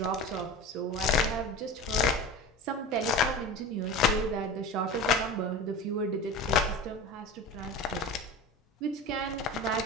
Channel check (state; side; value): normal; both; correlation 0.31